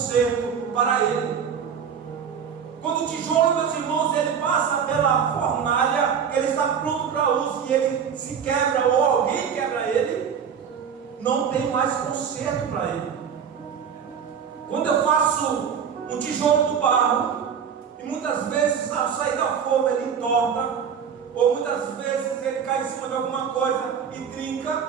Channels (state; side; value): quieter; left; 7.3 dB